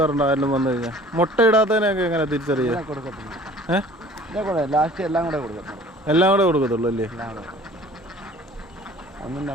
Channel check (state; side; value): normal; both; correlation 0.49